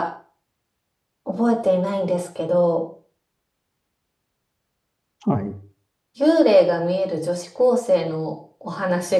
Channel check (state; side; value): identical; both; correlation 1.00